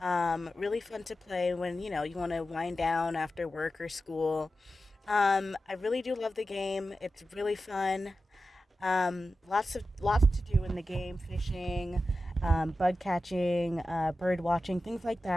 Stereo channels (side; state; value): both; normal; correlation 0.92